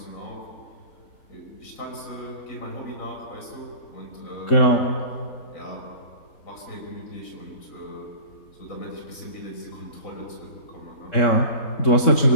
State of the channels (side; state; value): right; late; 3.7 ms